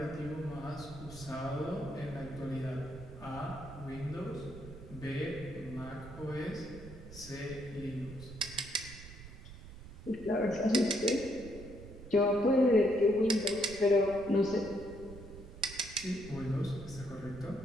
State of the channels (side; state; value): right; noise; rumble, 15 dB below the sound